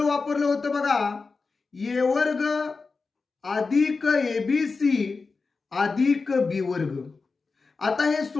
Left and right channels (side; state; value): right; quieter; 4.3 dB